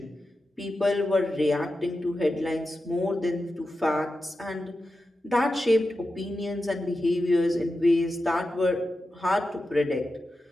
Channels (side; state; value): both; normal; correlation 0.91